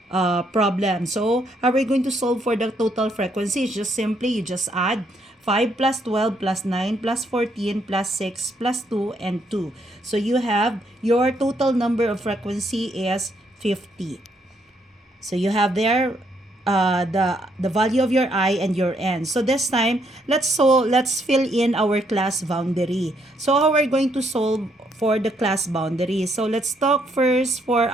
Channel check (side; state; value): both; normal; correlation 0.73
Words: problem. So how are we going to solve for the total frequency? It's just simply, you just add 5 plus 12 plus 9 plus 14 plus 6 plus 2 and 2. So you have your total number of frequency is 50. So you have there the value of your I and your N. So this time, let's fill in our class boundary. So how are we going to solve for the class boundary? So let's talk first for